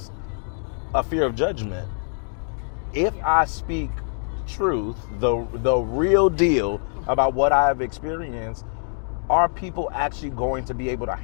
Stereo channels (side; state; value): right; silent; 58 dB below the other